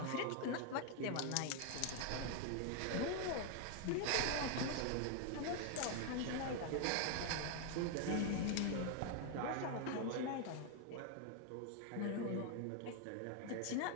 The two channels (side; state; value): both; different; correlation 0.00